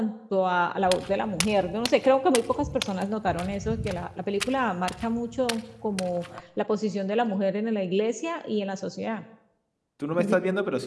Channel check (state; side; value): identical; both; correlation 1.00